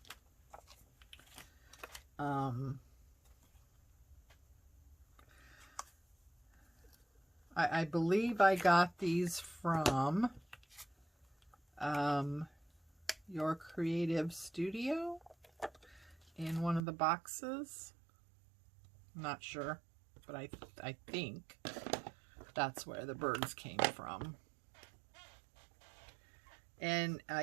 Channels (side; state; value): left; drops out; at 16.8 s